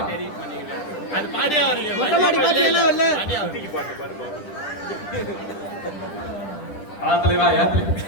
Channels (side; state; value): right; late; 10 ms